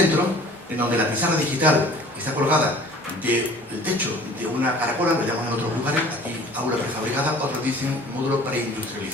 en donde la pizarra digital está colgada del techo de una caracola, lo llaman en otros lugares, aquí aula prefabricada, otros dicen módulo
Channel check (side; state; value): both; normal; correlation 0.48